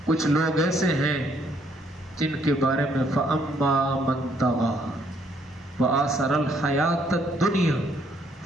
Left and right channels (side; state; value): both; normal; correlation 0.68